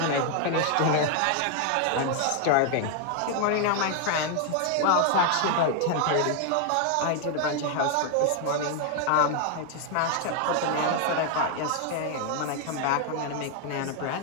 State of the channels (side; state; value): both; different; correlation 0.00